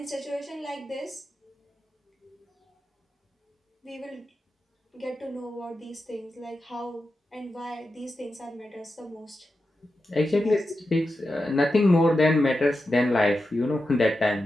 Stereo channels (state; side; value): normal; both; correlation 0.90